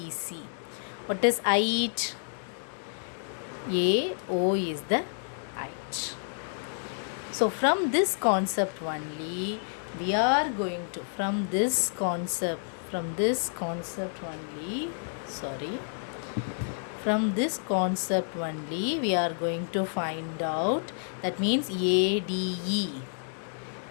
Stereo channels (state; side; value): silent; right; digital silence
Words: What is height? AO is the height. So from this concept only, we are going to, from this concept only, From this concept only we are going to find out, that means ADE.